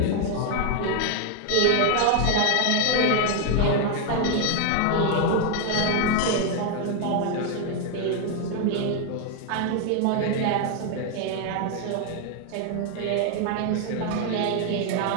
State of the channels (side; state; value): both; different; correlation 0.01